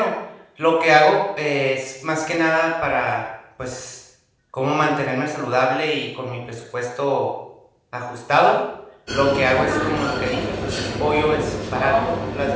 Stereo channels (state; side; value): identical; both; correlation 1.00